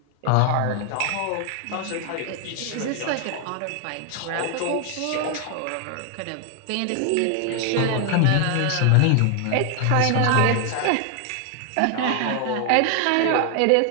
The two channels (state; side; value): different; both; correlation 0.00